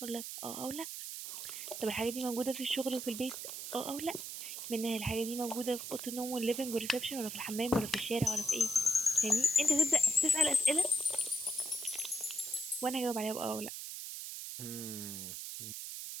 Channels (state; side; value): noise; right; hiss, 7 dB below the sound